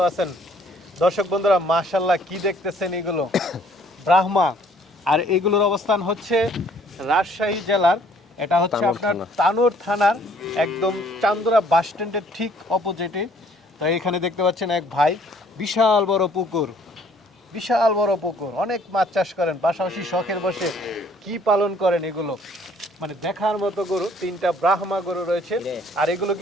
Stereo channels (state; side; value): normal; both; correlation 0.60